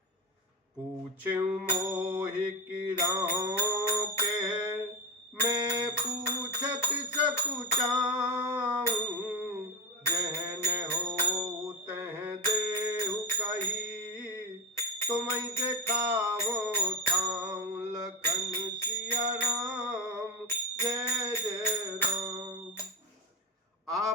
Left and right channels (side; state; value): both; normal; correlation 0.15